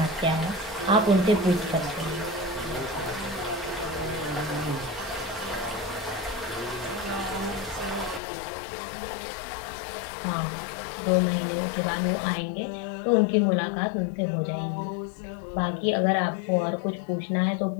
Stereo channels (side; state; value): right; drops out; at 8.2 s